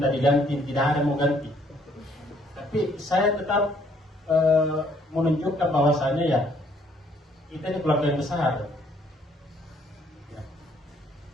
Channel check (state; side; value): normal; both; correlation 0.65